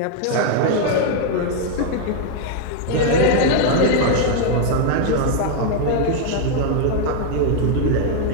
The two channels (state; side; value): different; both; correlation 0.00